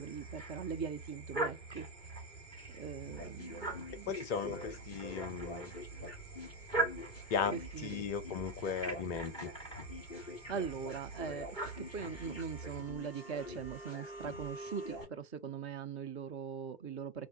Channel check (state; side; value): late; right; 2.2 ms